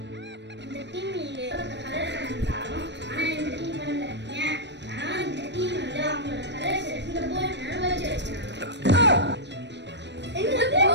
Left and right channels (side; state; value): left; late; 0.51 ms